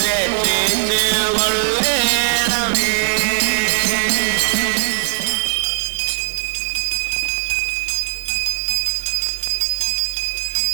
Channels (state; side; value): silent; left; digital silence